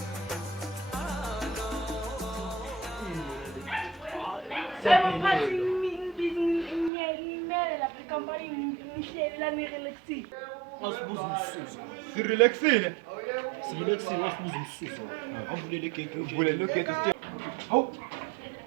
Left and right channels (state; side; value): drops out; left; at 6.9 s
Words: Sirelaxile. Wasibuza umsuso. Avulele igate. Uvulele igate sithe. Hawu.